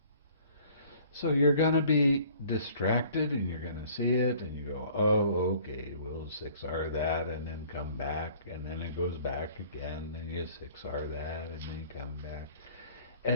So you're going to be distracted and you're going to see it and you go, oh, okay, we'll 6R that and then come back and then it goes back again and you 6R that and then come back.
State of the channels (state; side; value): inverted; both; correlation -0.53